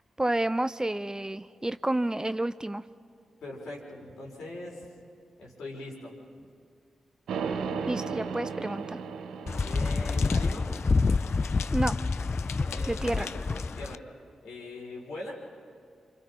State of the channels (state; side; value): normal; both; correlation 0.92